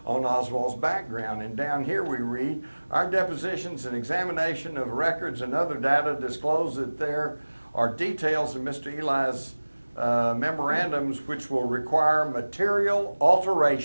on Oswald's background. And down here we read, our depositions and examination of records and other data disclose that there are details in Mr. Eli's memorandums which will require material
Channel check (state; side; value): inverted; both; correlation -1.00